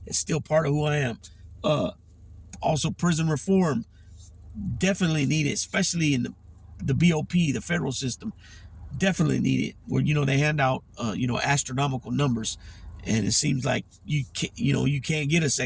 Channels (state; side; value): identical; both; correlation 1.00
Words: it's still part of who I am. Also, prison reform. Definitely need it, especially in the BOP, the federal system. Definitely need it. Where, they hand out, astronomical numbers. And it seems like you can't get a